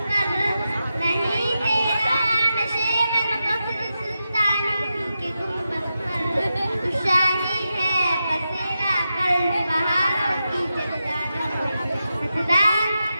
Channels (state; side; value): inverted; both; correlation -0.89